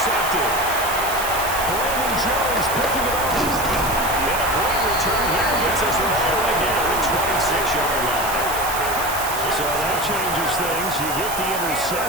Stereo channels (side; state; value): right; noise; hiss, 7 dB below the sound